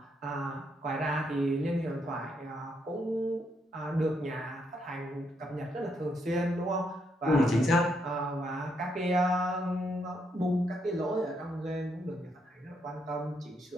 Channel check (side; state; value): both; normal; correlation 0.77